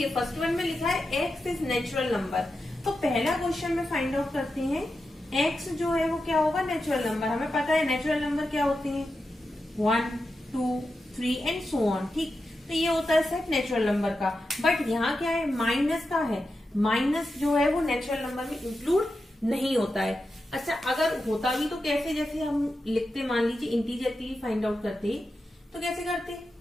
फर्स्ट वन में लिखा है x इज नेचुरल नंबर, तो पहला क्वेश्चन में फाइंड आउट करते हैं x जो है वो क्या होगा, नेचुरल नंबर। हमें पता है नेचुरल नंबर क्या होते हैं, 1, 2, 3 एंड सो ऑन, ठीक। तो ये होता है सेट नेचुरल नंबर का। बट यहाँ क्या है, माइनस का है, माइनस जो है वो नेचुरल नंबर में इंक्लूड नहीं होता है। अच्छा, अगर होता भी तो कैसे, जैसे हम लिखते, मान लीजिए इंटीजर के लिए फाइंड आउट करते तो कैसे करते,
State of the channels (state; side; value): normal; both; correlation 0.89